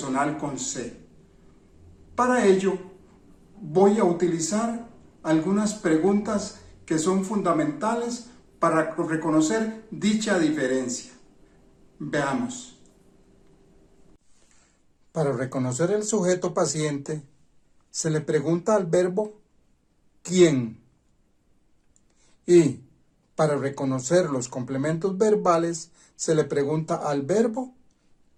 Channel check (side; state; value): both; identical; correlation 1.00